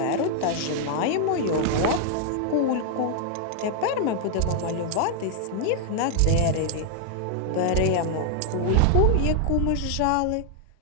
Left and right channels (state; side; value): different; both; correlation -0.01